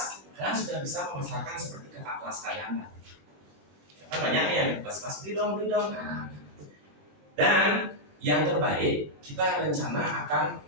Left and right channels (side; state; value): left; late; 21 ms